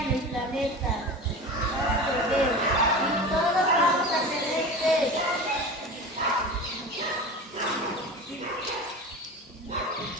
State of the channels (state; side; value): normal; both; correlation 0.32